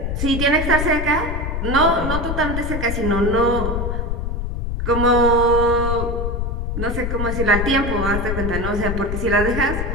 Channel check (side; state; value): left; noise; rumble, 2 dB below the sound